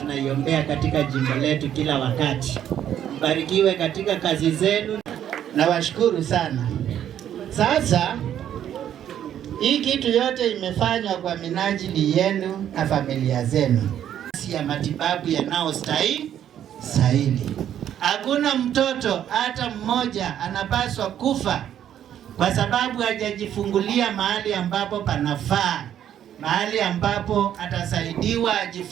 katika jimbo letu kila wakati. Mbarikiwe katika kazi zenu na washukuru sana. Sasa hii kitu yote imefanywa kwa minajili yenu na familia zenu, ya matibabu yanayostahili. Hakuna mtoto hata mmoja anapaswa kufa kwa sababu hajajifungulia mahali ambapo panafaa, mahali ambapo atasaidiwa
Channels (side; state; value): left; quieter; 10.3 dB